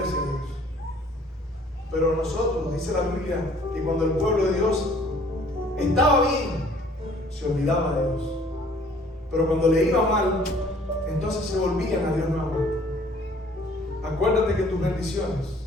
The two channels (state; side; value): normal; both; correlation 0.56